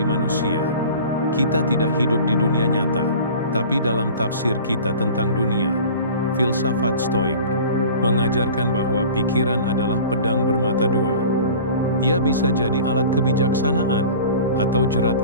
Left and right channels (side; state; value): both; inverted; correlation -0.41